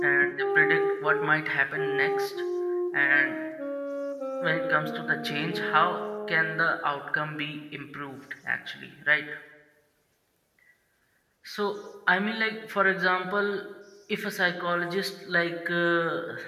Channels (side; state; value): both; identical; correlation 1.00